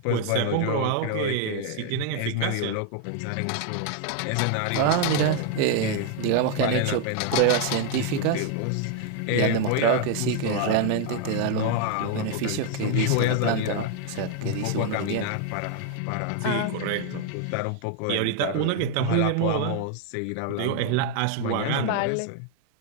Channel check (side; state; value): both; different; correlation 0.00